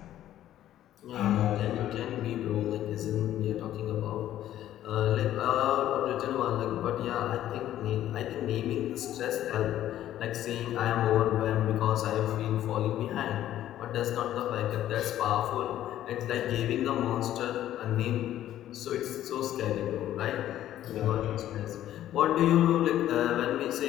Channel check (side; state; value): right; quieter; 12.5 dB